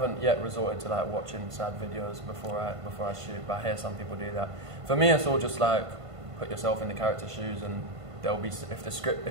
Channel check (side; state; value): left; late; 1.5 ms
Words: yet resorted to like watching sad videos before I shoot, but I hear some people do that. For me, it's all just like put yourself in the character's shoes, and they'll be,